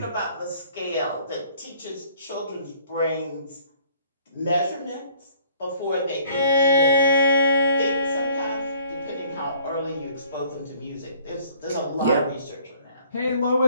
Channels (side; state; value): both; inverted; correlation -0.57